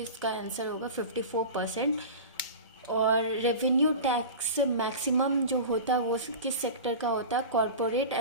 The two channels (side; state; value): both; inverted; correlation -0.31